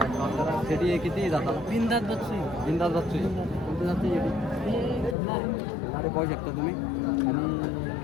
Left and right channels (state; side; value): drops out; right; at 5.2 s